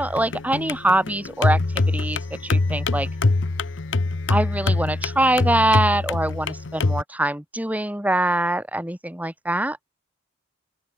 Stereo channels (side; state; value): both; normal; correlation 0.80